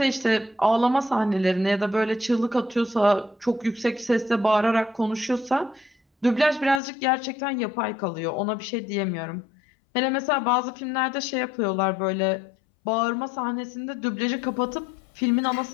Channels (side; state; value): right; drops out; at 6.8 s